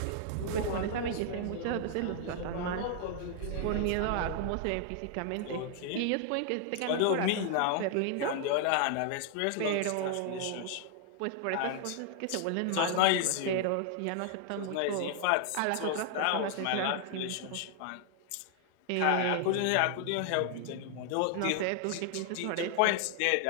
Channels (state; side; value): different; both; correlation 0.00